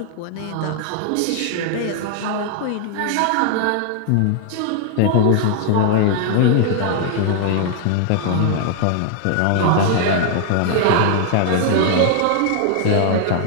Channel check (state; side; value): different; both; correlation 0.00